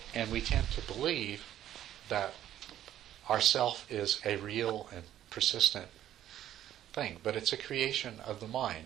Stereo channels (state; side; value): quieter; left; 11.9 dB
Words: and we tend to believe that our self is a real and persistent thing, but it's a creation of the